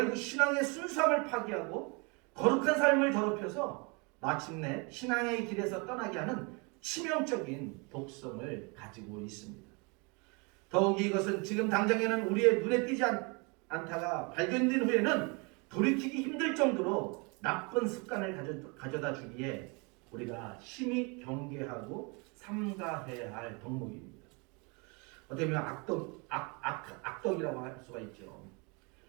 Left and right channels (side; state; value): left; quieter; 31.2 dB